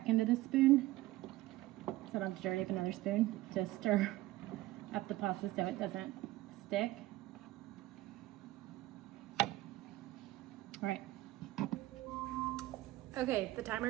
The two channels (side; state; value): left; quieter; 17.3 dB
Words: end of the spoon, so I don't have to dirty up another spoon. Just stir up the pasta so it doesn't stick. All right. Okay, the